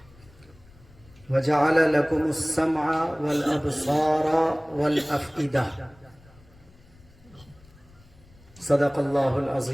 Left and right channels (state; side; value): noise; left; rumble, 26 dB below the sound